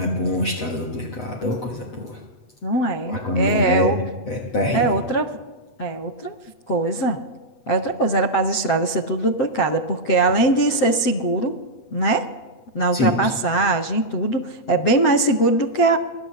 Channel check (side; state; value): right; late; 8.2 ms